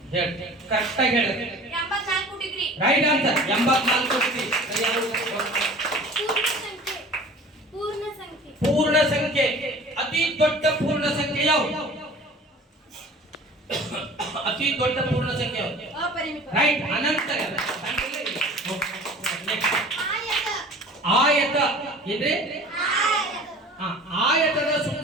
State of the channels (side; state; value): both; normal; correlation 0.44